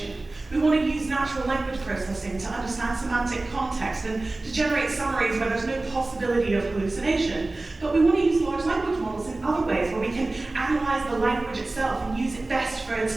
We want to use natural language processing to understand semantic context and to generate summaries where there's no possibility of hallucination. But we want to use large language models in other ways where we can analyze the language itself and use it best for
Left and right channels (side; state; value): left; quieter; 3.0 dB